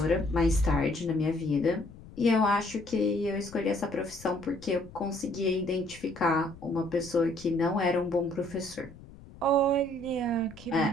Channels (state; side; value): noise; left; rumble, 19 dB below the sound